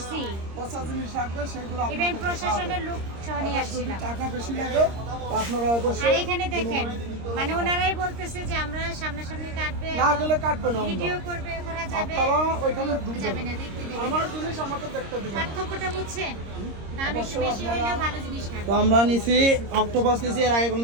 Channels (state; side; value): late; left; 26 ms